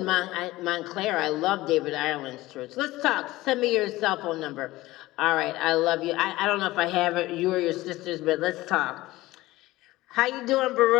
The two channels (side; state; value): right; quieter; 18.1 dB